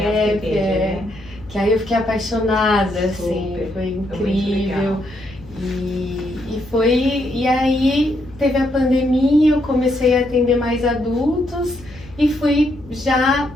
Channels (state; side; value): noise; left; hum, 20 dB below the sound